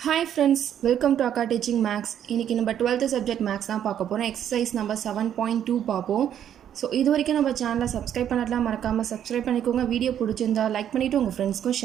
Hi friends, welcome to Akka Teaching Max. இன்னைக்கு நம்ம 12th subject Max தான் பார்க்க போறோம். Exercise number 7.2 பார்ப்போம். ஸோ இது வரைக்கும் நம்ம சேனலை சப்ஸ்கிரைப் பண்ணலாம், மறக்காமல் சப்ஸ்கிரைப் பண்ணிக்கோங்க. வீடியோ பிடிச்சிருந்தா லைக் பண்ணிவிட்டு உங்கள் ஃப்ரெண்ட்ஸ்க்கும்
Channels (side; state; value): left; quieter; 9.9 dB